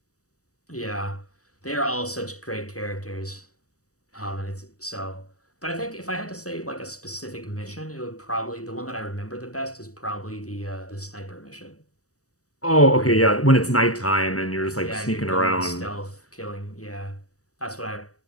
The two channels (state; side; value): late; right; 0.66 ms